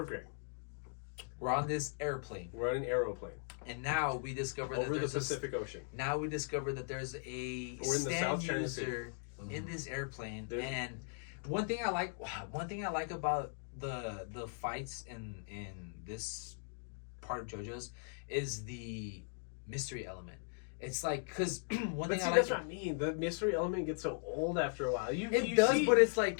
Grey. We're on this airplane, We're on an aeroplane and now we discover over that the there's Pacific Ocean. Now we discover that there's a We're in the stand South China user in this airplane, There's- and one thing I like about the fights in this part of JoJo's is the mystery element. It's like, because one But thing see, I like, that's what I mean. The mystery element gets so old after a while. You does, see, but it's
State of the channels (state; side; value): silent; right; digital silence